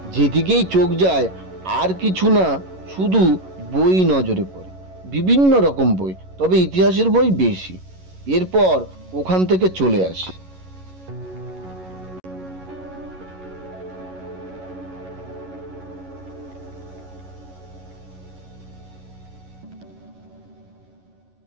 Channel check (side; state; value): left; late; 11 ms